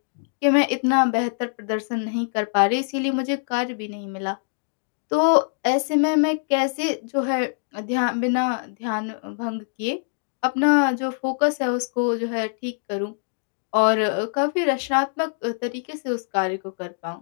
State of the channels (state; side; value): silent; right; digital silence